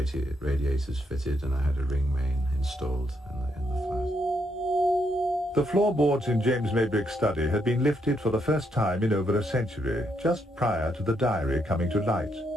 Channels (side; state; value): both; normal; correlation 0.77